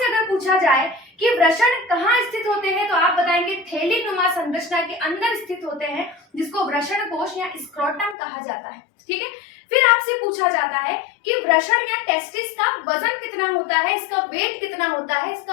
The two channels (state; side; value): drops out; right; at 8.2 s